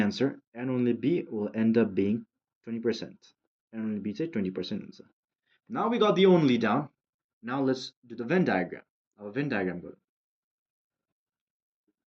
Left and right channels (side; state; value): both; identical; correlation 1.00